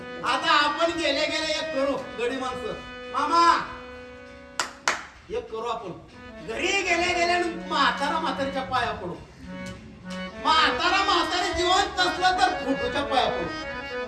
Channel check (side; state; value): both; identical; correlation 1.00